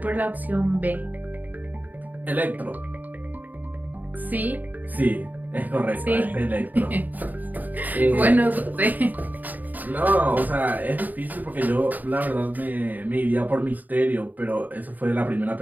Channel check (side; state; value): left; late; 0.083 ms